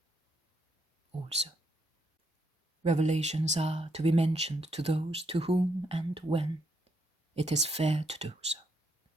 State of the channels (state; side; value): normal; both; correlation 0.76